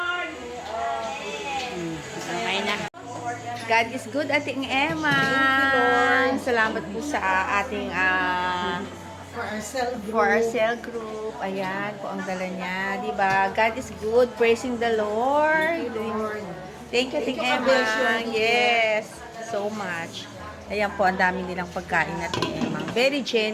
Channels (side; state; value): both; identical; correlation 1.00